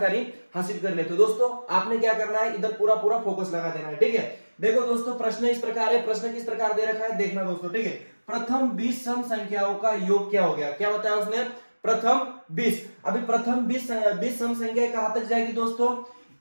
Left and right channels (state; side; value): inverted; both; correlation -1.00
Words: हासिल कर लेते हैं। दोस्तों आपने क्या करना है, इधर पूरा पूरा फोकस लगा देना है, ठीक है। देखो दोस्तों प्रश्न इस प्रकार है, प्रश्न किस प्रकार दे रखा है देखना दोस्तों, ठीक है। प्रथम 20 सम संख्याओं का योग क्या हो गया, क्या बताया उसने, प्रथम 20। अभी प्रथम 20 सम संख्या कहां तक जाएगी दोस्तों,